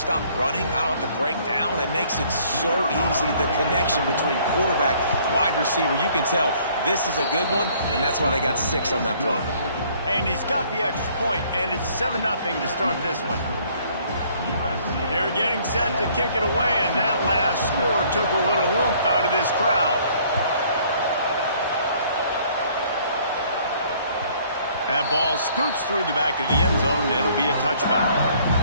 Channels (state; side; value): inverted; both; correlation -0.60